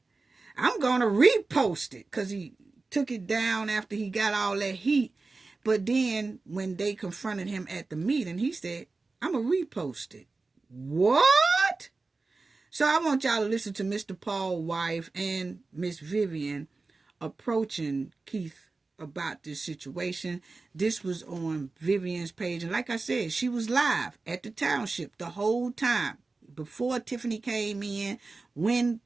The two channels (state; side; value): quieter; left; 3.7 dB